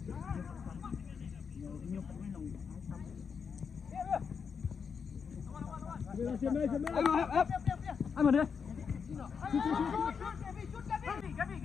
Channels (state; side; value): quieter; right; 6.2 dB